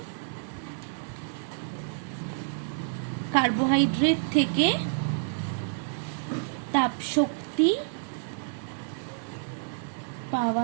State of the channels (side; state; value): left; silent; digital silence